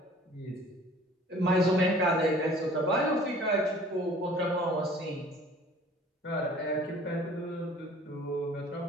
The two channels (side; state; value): both; normal; correlation 0.50